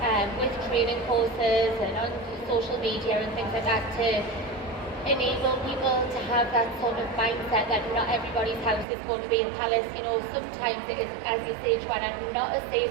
with training courses and on social media and things like that to enable people to have that sort of mindset that not everybody's house is going to be a palace. You know, sometimes it is, as you say, Joanna, not a safe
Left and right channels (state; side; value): drops out; left; at 8.8 s